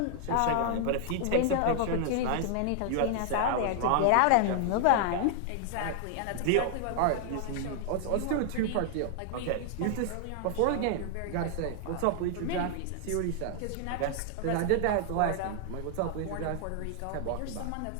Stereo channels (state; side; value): different; both; correlation 0.00